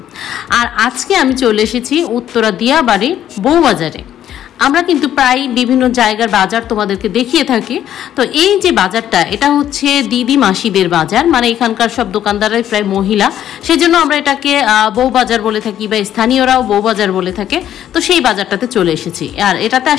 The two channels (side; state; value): right; quieter; 11.0 dB